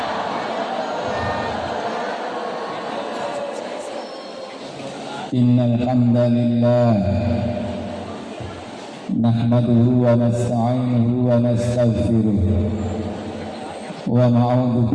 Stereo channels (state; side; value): identical; both; correlation 1.00